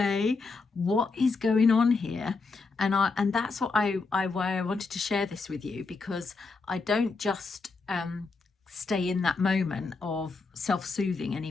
what is going on here? And that's what why I wanted to share this with you, because I don't just stay in that moment of self-soothing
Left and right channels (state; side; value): quieter; right; 4.1 dB